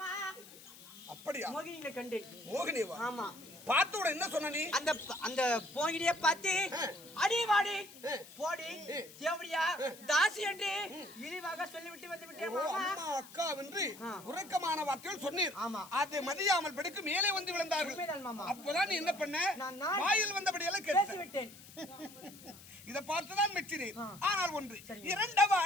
அப்படியா? மோகினியை கண்டேன். மோகினிவா? ஆமா. பார்த்தோட என்ன சொன்ன நீ? அந்த மோகினியை பார்த்து அடி வாடி போடி தேவடியா தாசி என்று இழிவாக சொல்லிவிட்டு வந்து விட்டேன் மாமா. அம்மா அக்கா என்று உறக்கமான வார்த்தைகள் சொன்னீர். ஆமா. அதை மதியாமல் படுக்கு மேலே வந்து விழுந்தார்கள். அப்பதான் நீ என்ன பண்ண? வாயில் வந்தபடியெல்லாம் பேசி விட்டேன். இதை பார்த்துதான் மெச்சினேன். ஆனால் ஒன்று இரண்டவ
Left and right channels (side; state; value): left; noise; hiss, 19 dB below the sound